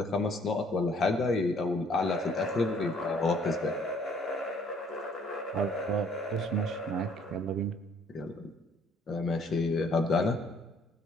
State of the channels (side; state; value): both; normal; correlation 0.61